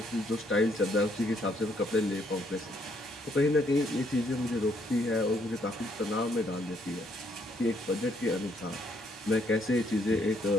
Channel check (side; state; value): both; normal; correlation 0.70